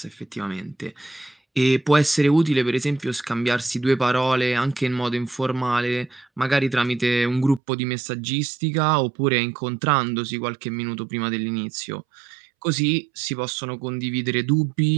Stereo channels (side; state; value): left; drops out; at 7.6 s